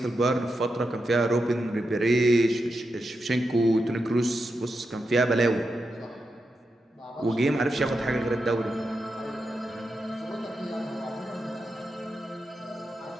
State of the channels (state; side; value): normal; both; correlation 0.87